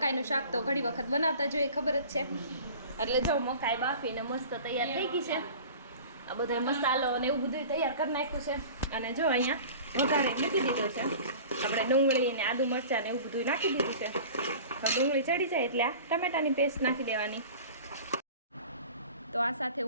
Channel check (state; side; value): inverted; both; correlation -0.41